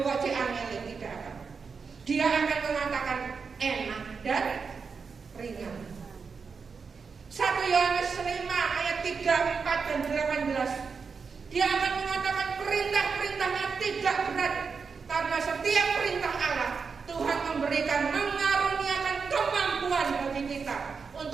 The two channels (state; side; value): quieter; left; 5.3 dB